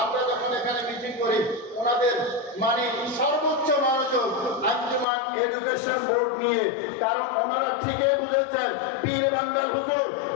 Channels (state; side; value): drops out; right; at 5.1 s